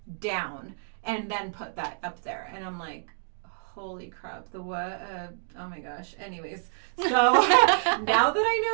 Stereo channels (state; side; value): silent; left; 59 dB below the other